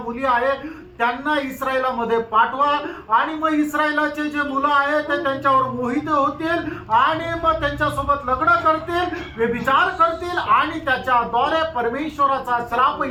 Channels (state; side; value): identical; both; correlation 1.00